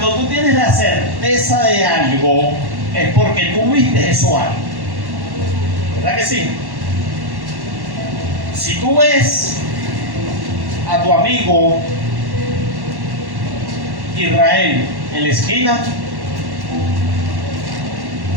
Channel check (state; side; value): late; left; 1.1 ms